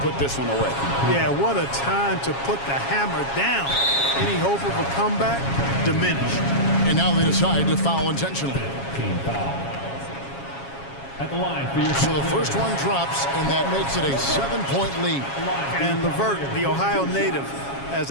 put this one away. Yeah, what a time to put the hammer down. Any hope of a comeback diminished. And now they decide to foul intentionally. Team foul. At the line for your So the first one drops, and that makes it a 7-point lead. And Levert, the Ohio native, has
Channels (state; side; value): late; right; 7.3 ms